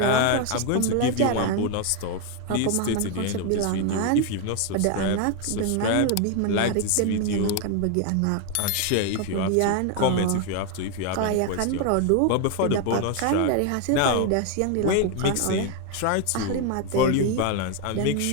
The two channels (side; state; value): both; different; correlation 0.01